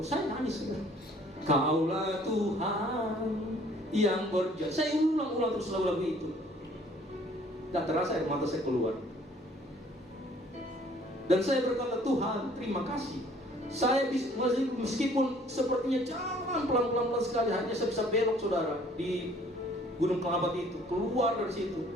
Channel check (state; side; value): normal; both; correlation 0.57